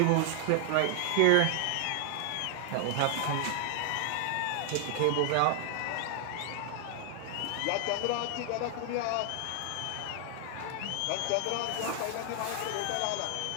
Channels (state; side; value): different; both; correlation 0.00